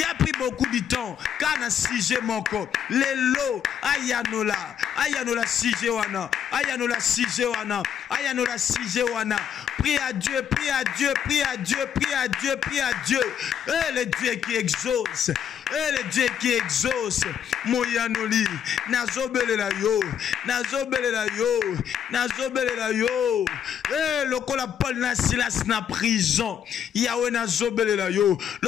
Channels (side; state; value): right; quieter; 8.8 dB